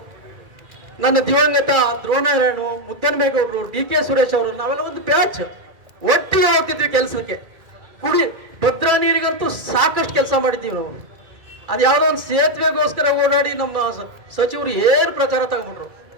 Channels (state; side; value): late; left; 2.4 ms